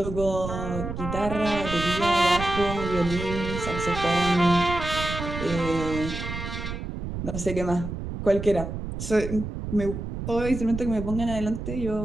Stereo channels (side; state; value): right; noise; rumble, 6 dB below the sound